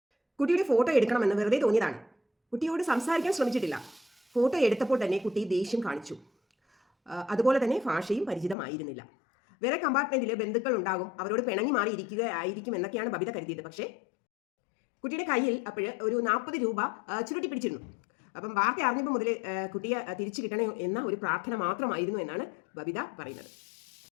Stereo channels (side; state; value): right; drops out; at 8.6 s